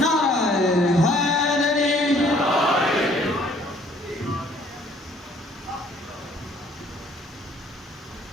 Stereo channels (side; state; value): both; normal; correlation 0.59